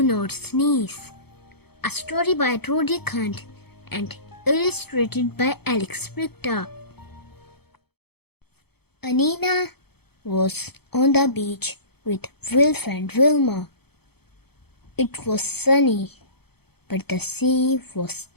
Not Sneeze, a story by Roderick and illustrated by Brychta. Anina was on the beach with Wilf and Wilma. It was sunny, but the sea was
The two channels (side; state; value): right; late; 0.97 ms